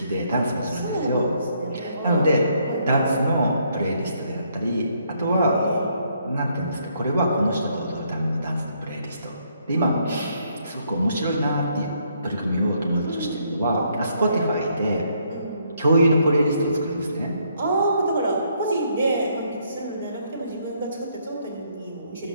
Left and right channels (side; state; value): both; inverted; correlation -0.71